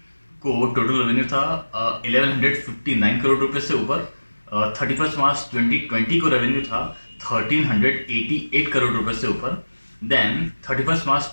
को टोटल रेवेन्यू था 1159 करोड़ रुपए से ऊपर। 31 मार्च 2020 को रेवेन्यू था 1388 करोड़ रुपए से ऊपर। देन 31 मार्च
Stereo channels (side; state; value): both; inverted; correlation -1.00